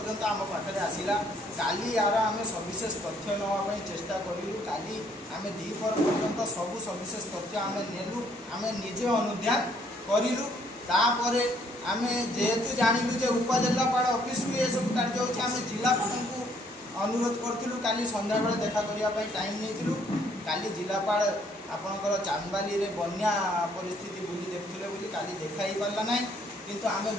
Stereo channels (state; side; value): normal; both; correlation 0.66